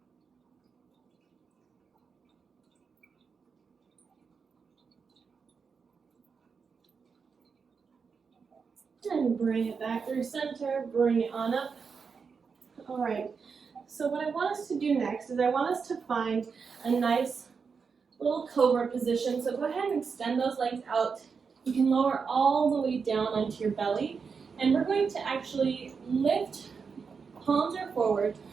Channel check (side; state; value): left; quieter; 5.6 dB